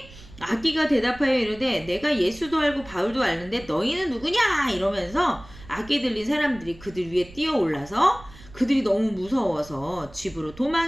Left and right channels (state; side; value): noise; right; rumble, 20 dB below the sound